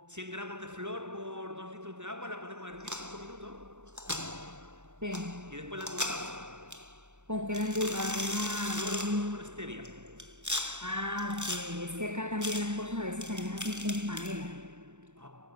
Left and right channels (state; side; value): late; left; 0.84 ms